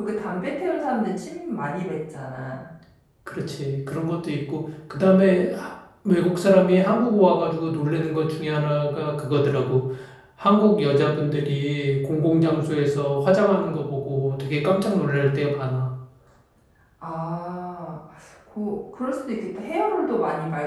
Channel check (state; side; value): identical; both; correlation 1.00